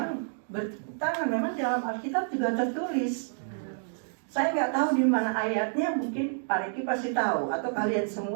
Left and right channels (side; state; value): left; silent; digital silence